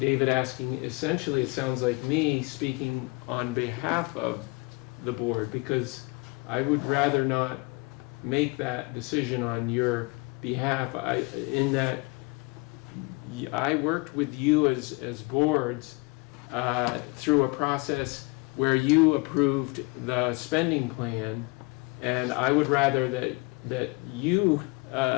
David asking? Essentially, it sounds like me speaking on behalf of the board, because I would rather not make that decision on your behalf. In that I worked with you as boards through a process where you approved the spending plan, and I would rather that you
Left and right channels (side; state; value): right; quieter; 27.3 dB